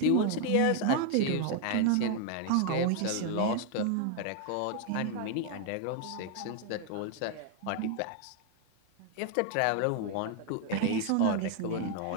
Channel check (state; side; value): different; both; correlation 0.00